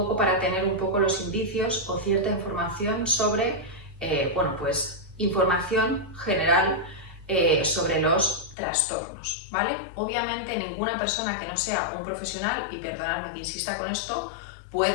para tener un poco los indicios o cierta información sobre, información general sobre los trastornos, ¿vale? Obviamente ninguna persona que no sea un profesional, y perdonadme que insista con esto,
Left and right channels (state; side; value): drops out; right; at 8.6 s